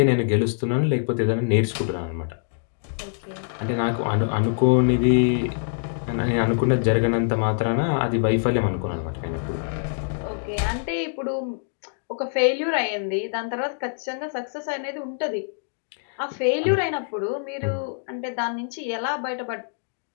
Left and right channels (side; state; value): right; silent; digital silence